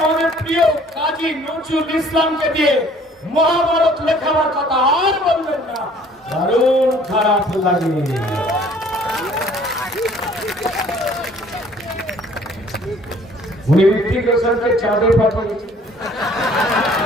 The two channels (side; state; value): both; normal; correlation 0.56